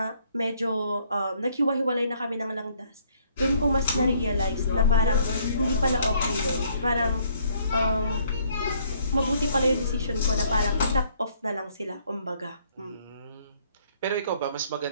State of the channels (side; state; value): both; inverted; correlation -0.64